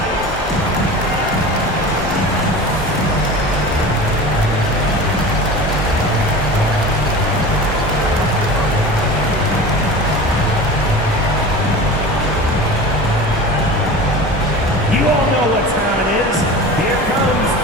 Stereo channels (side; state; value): both; normal; correlation 0.34